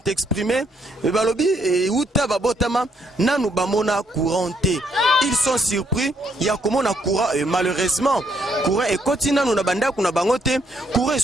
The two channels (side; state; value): both; normal; correlation 0.72